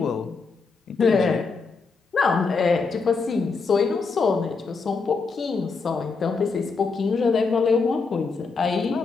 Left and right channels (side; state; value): right; quieter; 4.6 dB